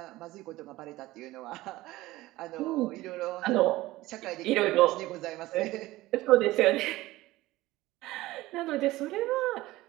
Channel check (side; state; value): left; quieter; 17.9 dB